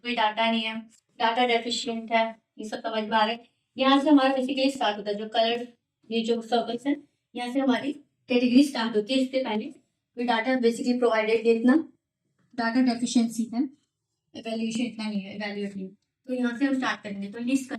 डाटा नहीं है, डाटा डेफिशिएंट है, ये सब समझ में आ रहा है। यहाँ से हमारा बेसिकली स्टार्ट होता है, जो कलर ये जो सर्कल्स है यहाँ से हमारी कैटेगरी स्टार्ट होती है। इससे पहले कोई डाटा बेसिकली प्रोवाइडेड, इतना डाटा डेफिशिएंसी है, इवैल्यूएशन इतना नहीं है, इवैल्यूएट नहीं। तो यहाँ से हम स्टार्ट करेंगे। तो लीस्ट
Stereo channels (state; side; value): identical; both; correlation 1.00